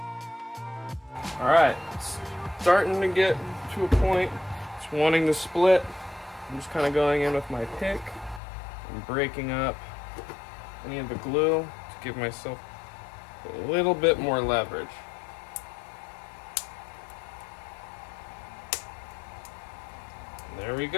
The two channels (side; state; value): right; drops out; at 8.4 s